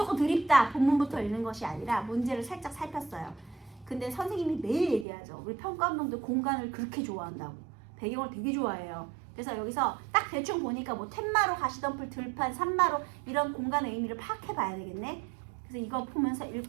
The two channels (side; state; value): left; drops out; at 5.1 s